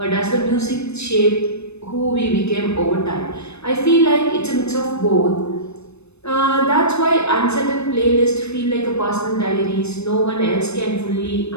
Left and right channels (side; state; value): right; late; 0.80 ms